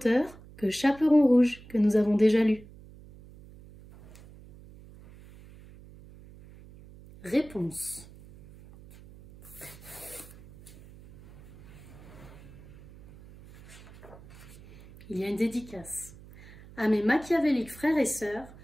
que Chaperon rouge que nous avons déjà lu. Réponse. Il y a une dédicace à mes machiavéliques frères et sœurs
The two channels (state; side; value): noise; right; hum, 20 dB below the sound